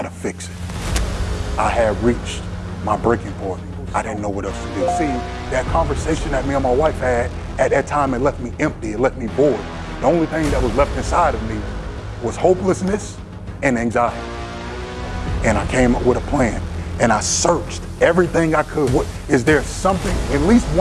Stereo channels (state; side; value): identical; both; correlation 1.00